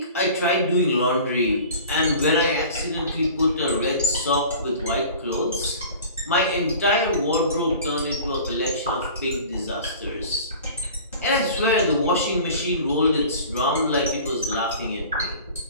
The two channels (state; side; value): inverted; both; correlation -0.42